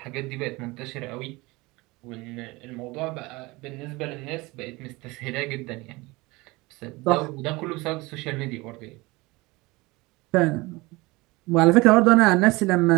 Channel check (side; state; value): left; quieter; 22.9 dB